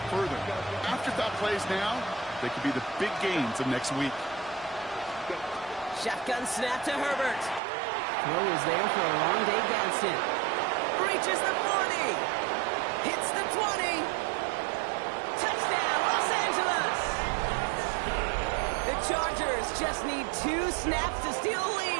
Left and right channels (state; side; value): drops out; left; at 7.6 s